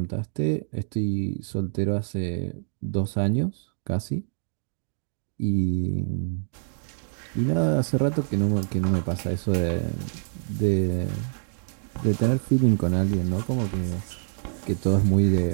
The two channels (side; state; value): left; silent; digital silence